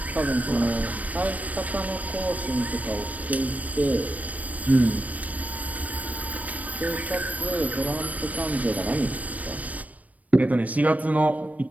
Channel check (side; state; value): left; late; 0.071 ms